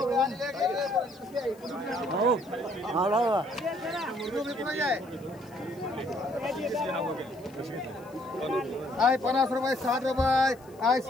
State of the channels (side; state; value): left; noise; hiss, 28 dB below the sound